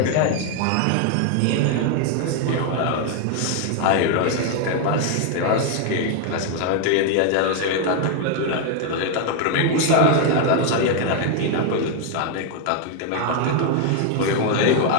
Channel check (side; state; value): both; different; correlation 0.00